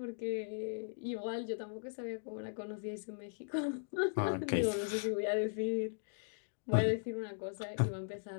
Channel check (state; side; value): silent; right; digital silence